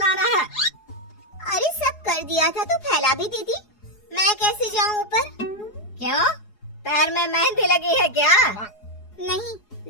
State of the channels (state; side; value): late; right; 4.8 ms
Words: है। अरे सब कर दिया था तो फैला भी दी थी। मैं कैसे जाऊं ऊपर? क्यों? पैर में मेहंदी लगी है क्या? नहीं,